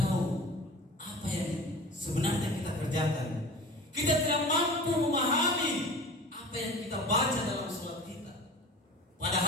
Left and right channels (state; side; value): normal; both; correlation 0.38